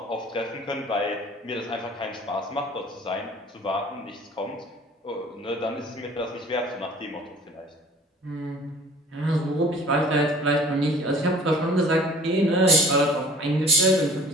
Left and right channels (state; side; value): normal; both; correlation 0.49